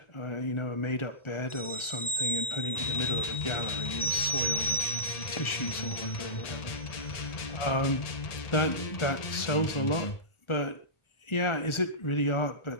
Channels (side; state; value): right; late; 1.4 ms